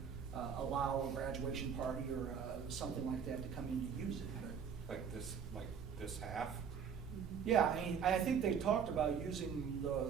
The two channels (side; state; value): left; quieter; 7.1 dB